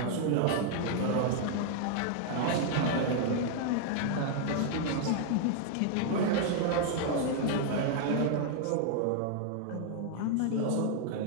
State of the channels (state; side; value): different; both; correlation 0.00